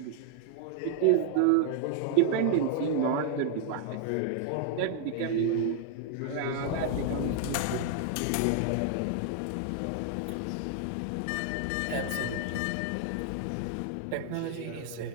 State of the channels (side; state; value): both; different; correlation 0.00